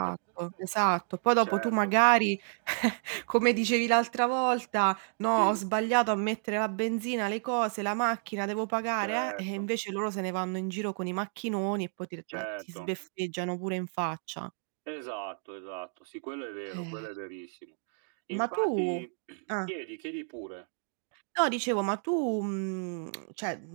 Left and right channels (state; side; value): silent; left; 57 dB below the other